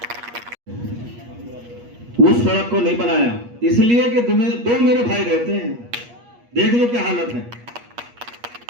उस सड़क को नहीं बनाया इसलिए कि दो मेरे भाई रहते हैं। देख लो क्या हालत है।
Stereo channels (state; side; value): late; left; 8.4 ms